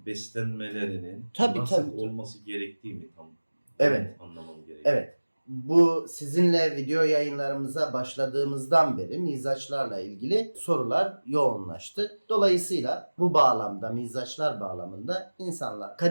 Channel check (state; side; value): inverted; both; correlation -1.00